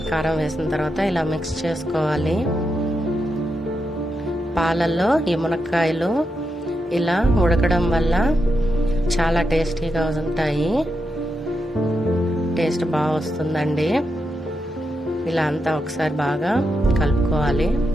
కారం వేసిన తర్వాత ఇలా మిక్స్ చేసుకోవాలి. పాలల్లో ఈ మునక్కాయలు ఇలా ఉడకడం వల్ల చాలా టేస్టీగా ఉంటాయి. టేస్ట్ బాగా వస్తుందండి. ఇలా అంతా ఒకసారి బాగా కలుపుకోవాలి.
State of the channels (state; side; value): normal; both; correlation 0.85